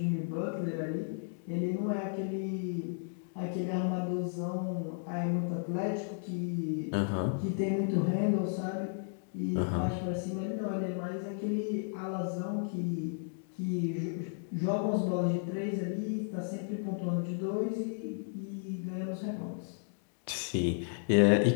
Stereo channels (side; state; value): right; silent; digital silence